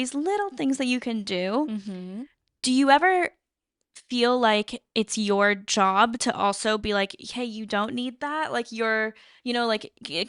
little things that you can do. Mm-hmm. Do you ever feel like it's your job to also be like, hey, you don't need that? Like like,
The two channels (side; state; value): both; identical; correlation 1.00